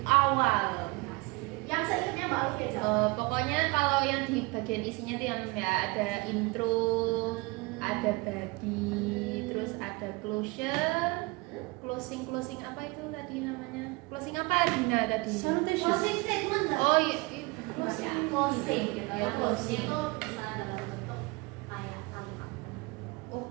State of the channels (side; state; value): left; quieter; 25.2 dB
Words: awal? Yang seingatnya Mbak Alfi aja. Pokoknya kalau yang di bagian isinya tuh yang ya ada intro, ada body, terus ada closure, closing apa itu tadi namanya? Closing apa Dina tadi? Salutation. Closing statement nggak? Oh iya, Closing gitu ya. Closing. Itu bisa dalam bentuk kayak kalimat.